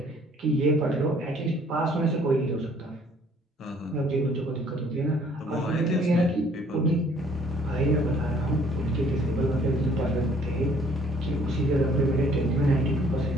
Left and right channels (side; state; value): both; normal; correlation 0.59